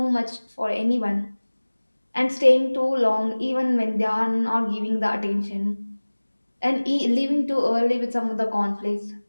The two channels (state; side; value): inverted; both; correlation -1.00